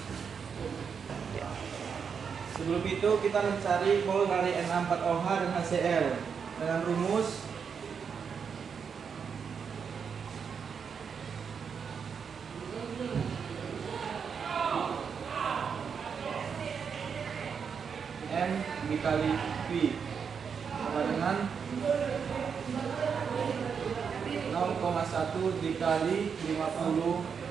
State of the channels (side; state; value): left; quieter; 6.5 dB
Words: Sebelum itu kita mencari mol dari NH4OH dan HCl dengan rumus M dikali V sama dengan 0,1 dikali 50